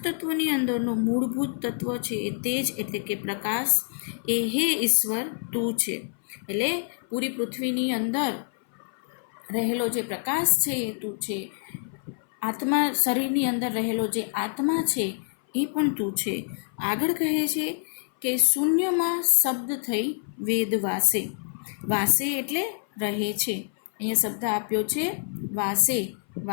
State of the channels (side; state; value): right; silent; 58 dB below the other